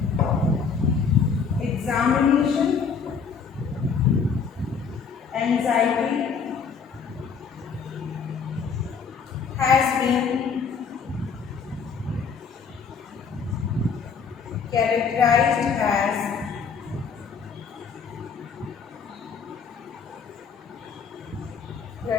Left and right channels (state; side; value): quieter; right; 5.9 dB